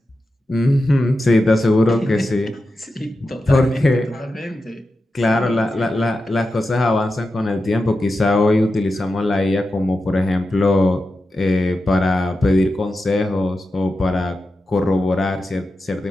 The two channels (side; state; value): both; normal; correlation 0.90